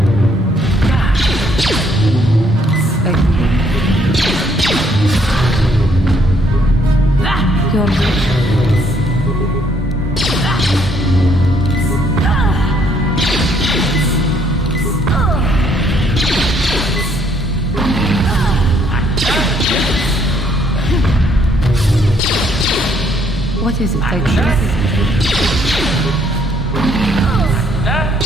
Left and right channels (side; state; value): both; normal; correlation 0.67